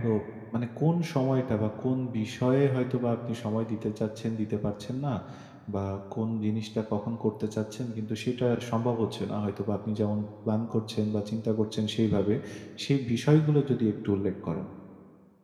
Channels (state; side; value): identical; both; correlation 1.00